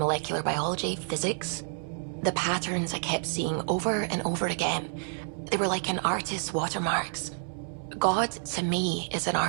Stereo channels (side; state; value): left; silent; 58 dB below the other